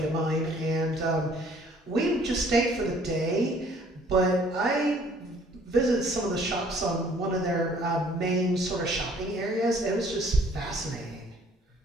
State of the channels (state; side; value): normal; both; correlation 0.58